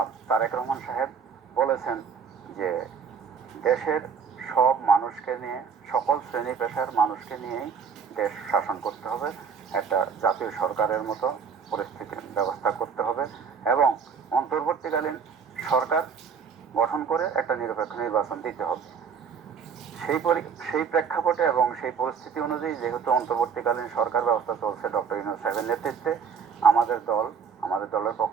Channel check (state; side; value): quieter; left; 6.4 dB